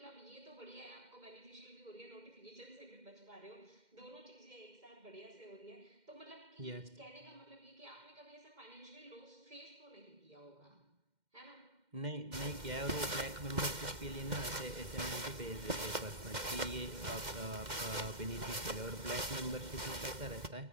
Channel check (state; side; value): late; left; 2.1 ms